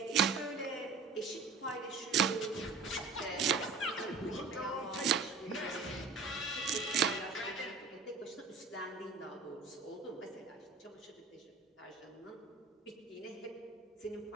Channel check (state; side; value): quieter; left; 4.5 dB